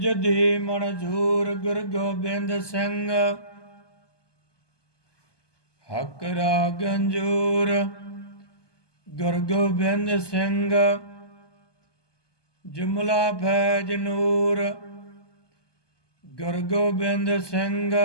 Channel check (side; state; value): right; late; 1.2 ms